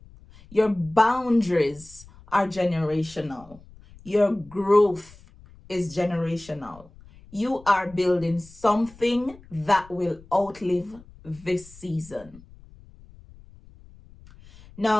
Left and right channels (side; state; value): left; noise; rumble, 23 dB below the sound